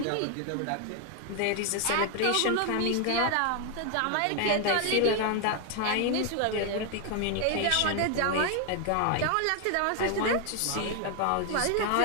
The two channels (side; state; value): both; different; correlation 0.01